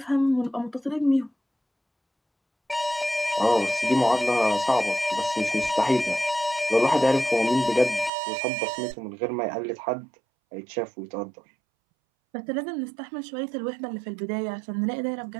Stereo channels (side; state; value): left; drops out; at 8.1 s